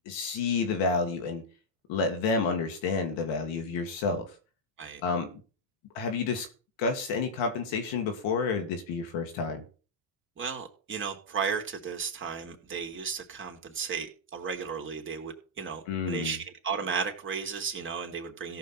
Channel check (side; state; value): both; normal; correlation -0.04